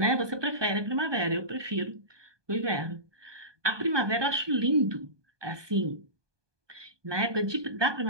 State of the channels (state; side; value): late; left; 1.2 ms